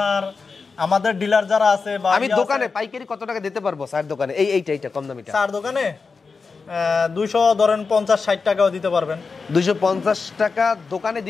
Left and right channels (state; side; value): quieter; right; 4.7 dB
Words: আমাদের ডিলার যারা আছে বা আমি দোকানে পাইকারি কত টাকা দিতে পারবো চার দোকানে? এইটা কম দামিটা চার দোকানে 200 ধরেন 50-60 টাকাও দিতে পারবেন। 250 টাকা দোকানে